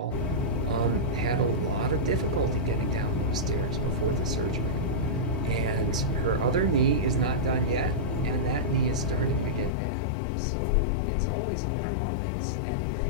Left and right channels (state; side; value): drops out; right; at 9.7 s